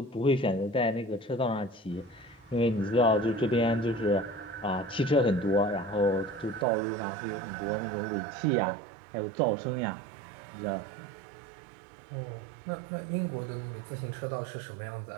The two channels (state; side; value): drops out; left; at 6.7 s